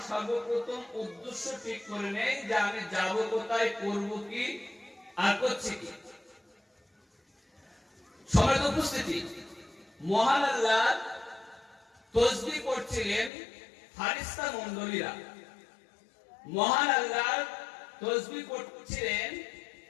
সর্বপ্রথম উদ্দেশ্য ঠিক করে নেই যে আমি যাব কোথায়, করব কি আর করছি কি। সবার উপস্থিতি, মহান আল্লাহ তাসবিহ করছিলেন ফারিস্তা মণ্ডলীরা, মহান আল্লাহ তাসবিহ করছিলেন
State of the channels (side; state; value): right; drops out; at 13.3 s